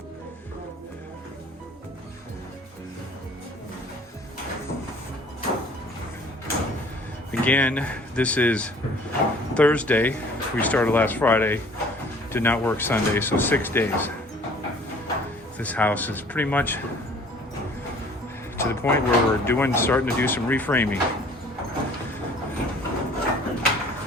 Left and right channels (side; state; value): both; normal; correlation 0.52